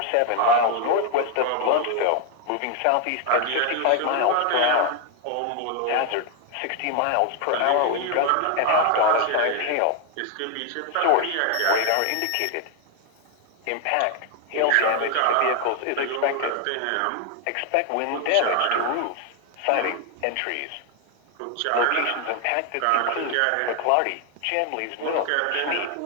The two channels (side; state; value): both; different; correlation 0.00